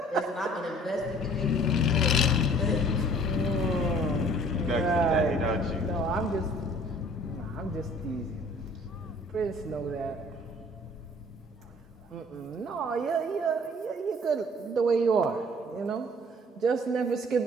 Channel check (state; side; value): normal; both; correlation 0.53